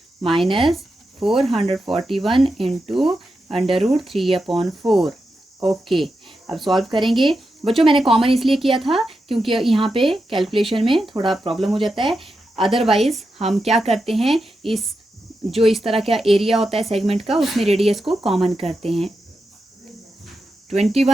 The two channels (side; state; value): both; normal; correlation 0.88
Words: माइनस 441 इंटू √3/4। ओके, अब सॉल्व करेंगे बच्चों। मैंने कॉमन इसलिए किया था क्योंकि यहाँ पे कैलकुलेशन में थोड़ा प्रॉब्लम हो जाता है, अदरवाइज हम क्या करते हैं, इस तरह का एरिया होता है सेगमेंट का, उसमें रेडियस को कॉमन करते हैं।